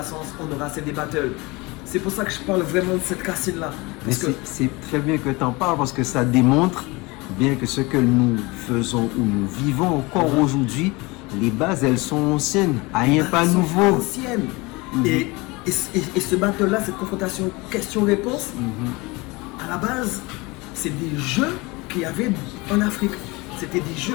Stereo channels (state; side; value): quieter; right; 24.4 dB